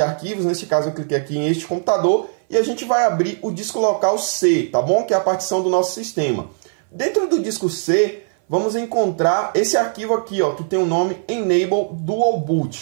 arquivos, neste caso eu cliquei aqui em este computador, e a gente vai abrir o disco local C, tá bom? Que é a partição do nosso sistema. Dentro do disco C, vamos encontrar esse arquivo aqui, ó, que tem o nome Enable Dual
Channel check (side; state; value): left; silent; 59 dB below the other